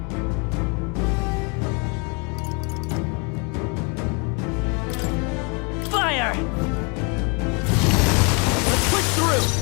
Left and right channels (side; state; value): right; quieter; 33.2 dB